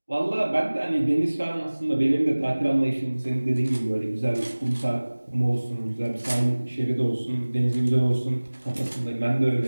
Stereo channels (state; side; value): inverted; both; correlation -1.00